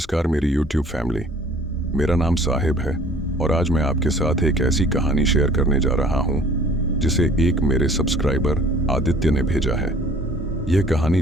मेरी YouTube family. मेरा नाम साहिब है और आज मैं आपके साथ एक ऐसी कहानी शेयर करने जा रहा हूं जिसे एक मेरे सब्सक्राइबर आदित्य ने भेजा है। यह कहानी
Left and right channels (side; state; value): both; normal; correlation 0.52